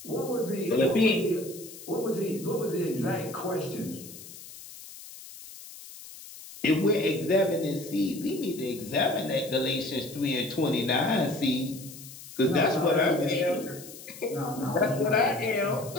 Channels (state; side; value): noise; left; hiss, 15 dB below the sound